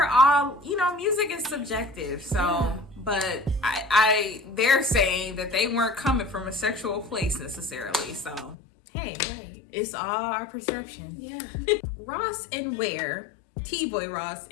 all, you know, music is subjective. So, but they're saying that they weren't coming from a sexual place necessarily. So, hey, It's all our perception. Yeah. Ross and Ware, T-Boy Ross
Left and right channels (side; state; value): right; drops out; at 8.6 s